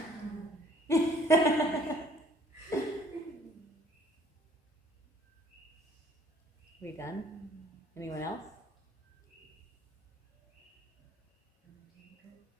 We done? Anyone else?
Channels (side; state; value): both; normal; correlation 0.59